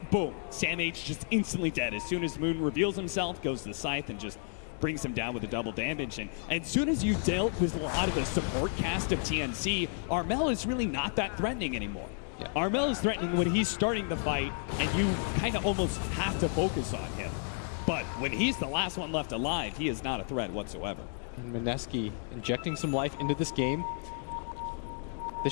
boom, Sam H just instantly dead. As soon as Moon reveals himself, goes to the Scythe and just brings him down with the double damage. And as soon as you dealt with a lot of the support cast of TNC, Armel is really not that threatening anymore. Yeah. Armel is threatening when he's starting the fight, and you kind of almost have to focus on him. But when he's the last one left alive, he is not a threat whatsoever. And Mineski injecting some life into this game. This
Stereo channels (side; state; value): right; silent; 57 dB below the other